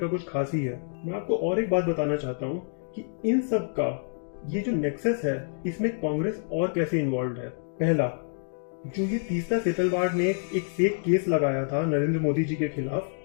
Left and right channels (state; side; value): silent; right; digital silence